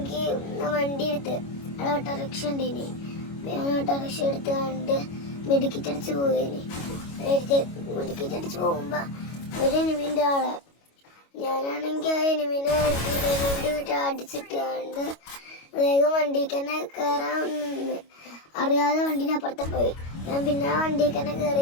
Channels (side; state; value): right; late; 25 ms